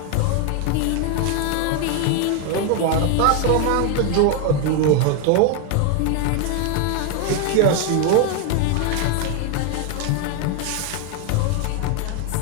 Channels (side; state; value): both; different; correlation 0.01